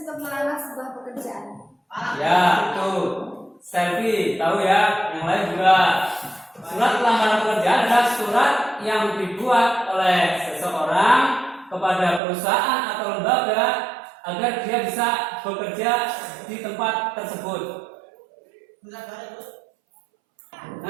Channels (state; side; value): drops out; left; at 12.2 s